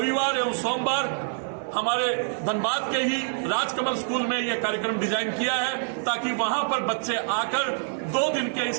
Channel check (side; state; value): left; silent; 58 dB below the other